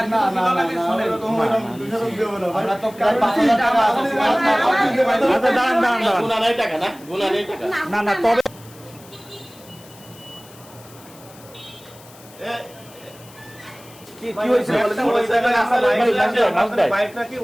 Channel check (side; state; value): left; noise; hiss, 23 dB below the sound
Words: ছিল না নাকি না শুনেন এরকম এরকম দুশো দেব না ভাই আমরা তো প্রায় 5000 টাকা আছে আচ্ছা দাঁড়ান দাঁড়ান দাঁড়ান গুণা নাই টাকা না? গুণা নেই টাকা। না না তবে কি হয়েছিল বলেন তো? ওই জায়গায় আমার বাইকটা কি